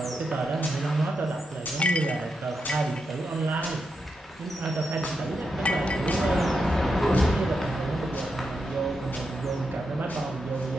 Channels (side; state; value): both; normal; correlation 0.85